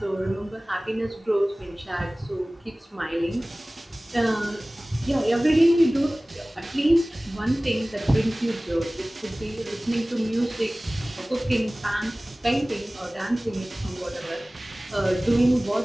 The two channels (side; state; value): both; normal; correlation 0.98